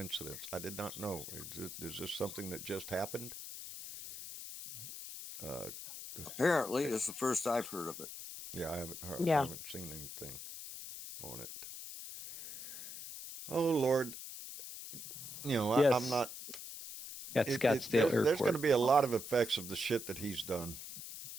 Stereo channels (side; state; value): left; noise; hiss, 10 dB below the sound